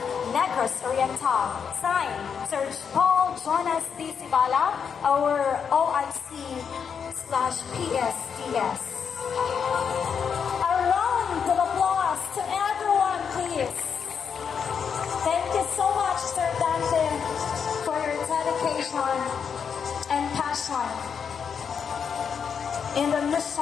Negros Oriental. Signed, Sir Paul Jonas D. Sibala, our OIC/PSDS. A round of applause to everyone, please. Thank you so much, Sir Dante, for your dedication and passion in the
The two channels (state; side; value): quieter; right; 6.8 dB